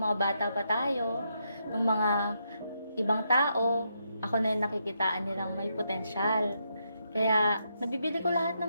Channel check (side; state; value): both; inverted; correlation -0.80